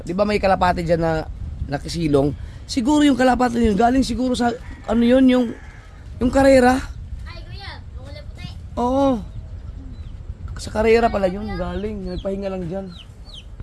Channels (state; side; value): identical; both; correlation 1.00